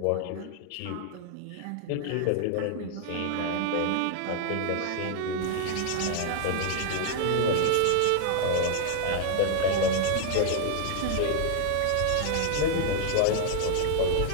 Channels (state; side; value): different; both; correlation 0.00